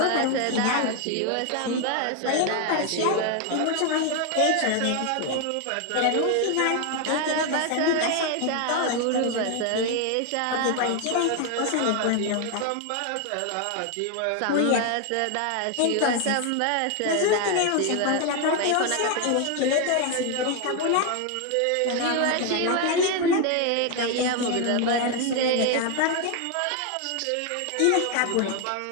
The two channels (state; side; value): different; both; correlation 0.01